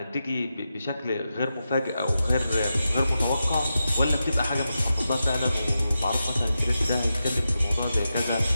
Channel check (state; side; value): inverted; both; correlation -0.89